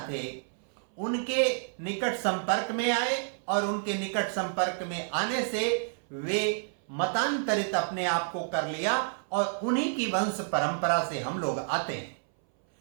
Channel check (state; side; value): silent; left; 58 dB below the other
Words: थे उनके निकट संपर्क में आए और उनके निकट संपर्क में आने से वे मतांतरित अपने आप को कर लिया और उन्हीं की वंश परंपरा से हम लोग आते हैं।